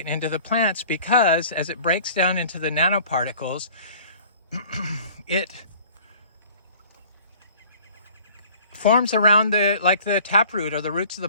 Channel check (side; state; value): both; inverted; correlation -0.49